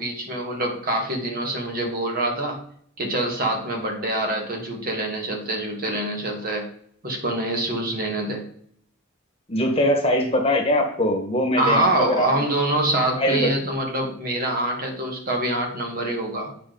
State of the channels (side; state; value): both; normal; correlation 0.05